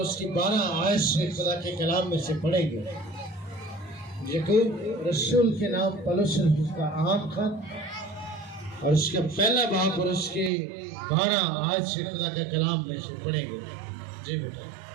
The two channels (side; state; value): left; drops out; at 10.5 s